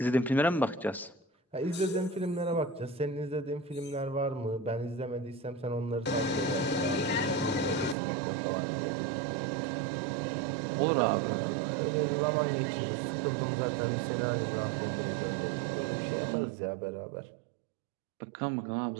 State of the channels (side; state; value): left; drops out; at 8.0 s